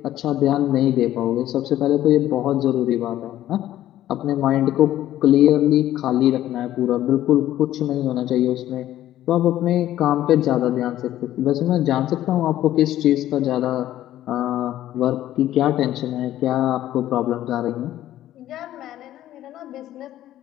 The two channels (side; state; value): right; quieter; 13.2 dB